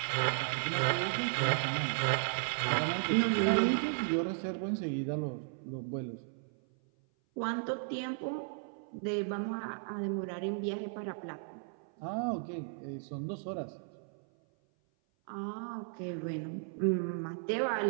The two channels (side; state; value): left; silent; 54 dB below the other